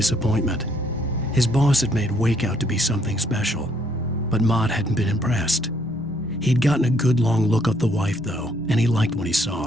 His boss had made Wake out to be something special, but Mott hadn't been impressed. He'd gotten a good long look at the wife, though, and he liked what he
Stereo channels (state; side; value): normal; both; correlation 0.68